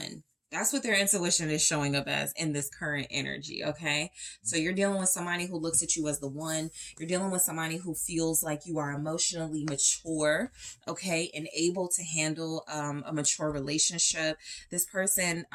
That's what their intuition is showing up as in this current energy, okay? So you're dealing with somebody who looks at you as the one. You're dealing with somebody who feels like you are emotionally mature, okay, and able to handle a mature relationship. This person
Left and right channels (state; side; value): identical; both; correlation 1.00